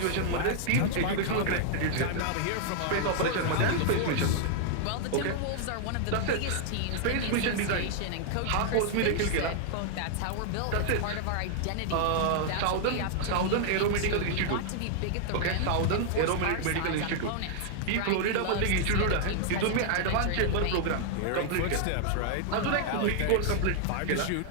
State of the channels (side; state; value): both; different; correlation -0.01